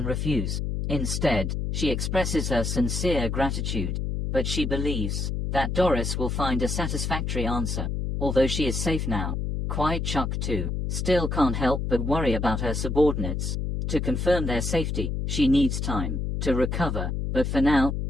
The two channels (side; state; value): left; noise; hum, 1 dB below the sound